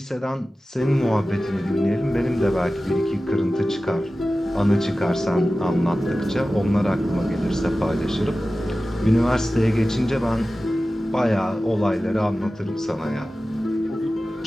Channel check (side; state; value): both; normal; correlation 0.95